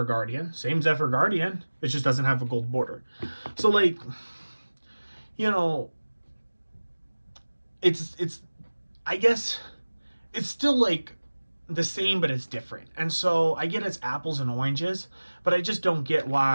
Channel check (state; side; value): inverted; both; correlation -1.00